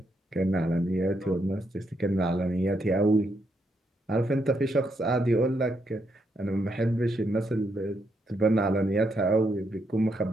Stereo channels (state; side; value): normal; both; correlation 0.78